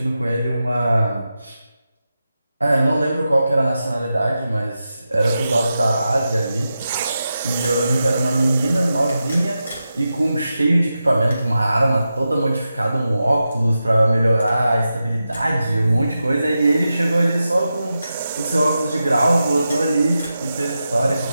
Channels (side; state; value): both; inverted; correlation -0.90